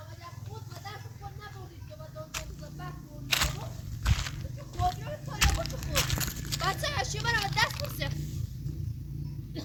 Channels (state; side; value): identical; both; correlation 1.00